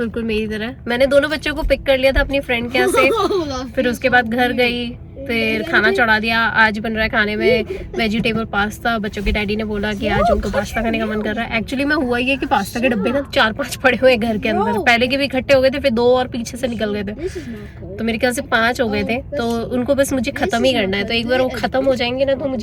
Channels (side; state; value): both; identical; correlation 1.00